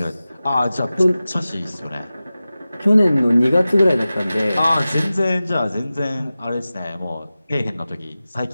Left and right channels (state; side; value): inverted; both; correlation -0.96